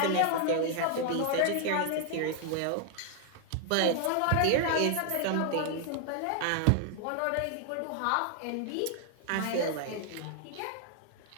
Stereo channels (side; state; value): both; different; correlation 0.00